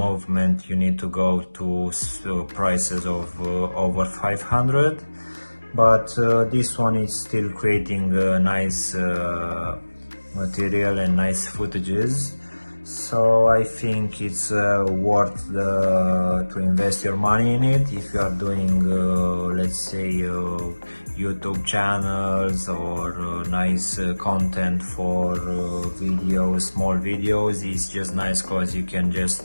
you need to go to prices of over 500. But this one is still creating nice material and nice footages, so I think it's worth to invest your money in it if you are doing let's say YouTube channels or nice content for videos, small videos. It's just nice because you can just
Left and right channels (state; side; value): inverted; both; correlation -1.00